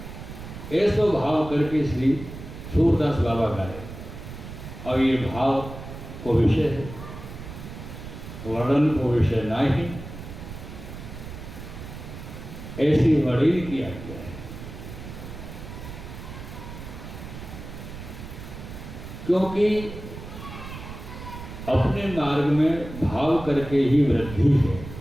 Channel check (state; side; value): noise; right; rumble, 11 dB below the sound